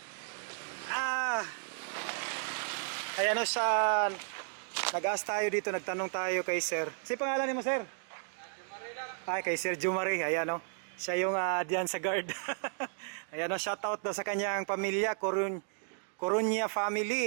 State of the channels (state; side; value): silent; left; digital silence